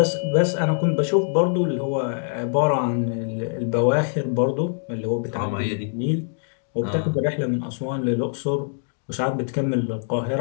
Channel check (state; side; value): silent; right; digital silence